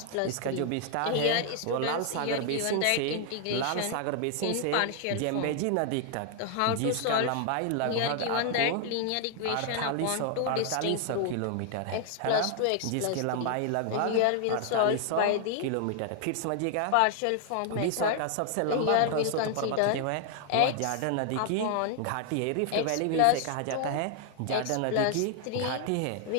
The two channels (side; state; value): both; different; correlation 0.00